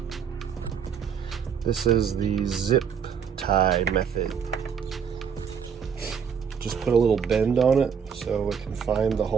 This is the zip tie method. Just put a little bend on it so it can find the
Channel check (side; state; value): left; quieter; 7.1 dB